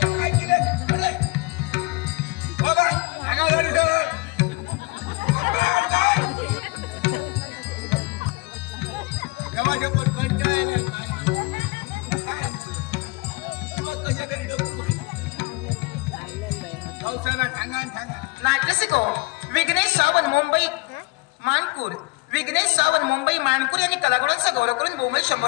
काय किले बाबा आगा झाली सर केव्हा पण कंटाळले नाट्यसिको विघ्नेश सावंत मुंबई मानपूर विघ्नेश सावंत मुंबई मानपूर यांनी कलागुणांचा गौरव करून मुंबई 100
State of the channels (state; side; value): quieter; right; 25.2 dB